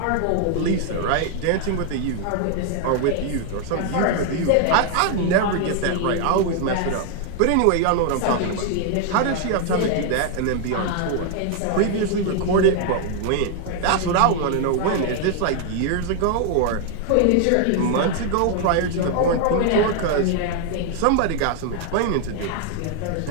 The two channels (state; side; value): different; both; correlation 0.00